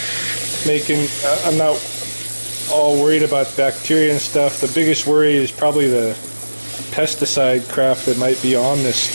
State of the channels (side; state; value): both; inverted; correlation -1.00